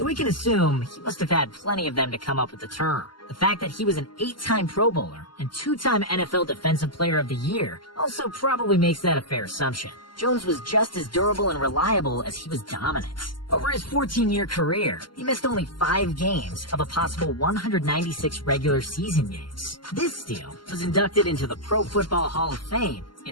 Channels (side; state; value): right; late; 0.71 ms